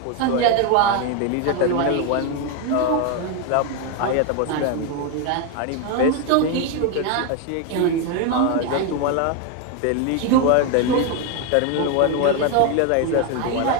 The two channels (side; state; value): both; different; correlation 0.02